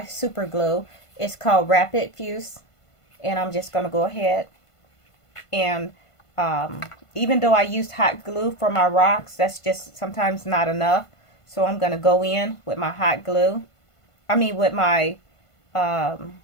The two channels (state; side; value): late; right; 1.5 ms